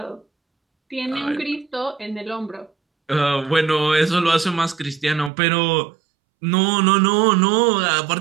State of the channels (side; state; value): left; drops out; at 5.3 s